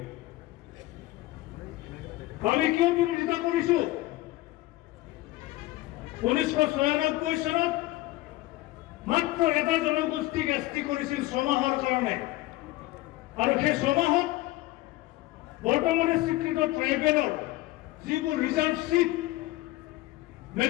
আমি কিয় বিৰোধিতা কৰিছো? 1996 চনত মাত্ৰ এটা জনগোষ্ঠীক এছটি কৰিছিল 6 মাহৰ কাৰণে, আৰু সেই 6 মাহত বৰ্তমানে স্বীকৃত ট্ৰাইবেলৰ যিবোৰ reserve seat,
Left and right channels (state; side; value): quieter; right; 18.1 dB